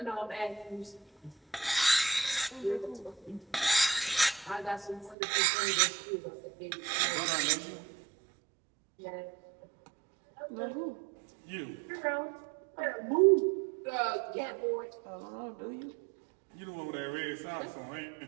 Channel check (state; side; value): drops out; left; at 5.2 s